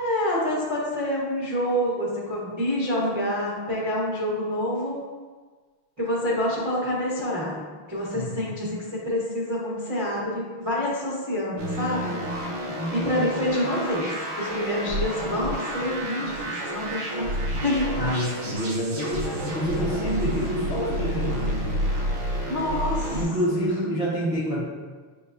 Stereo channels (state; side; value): late; left; 6.2 ms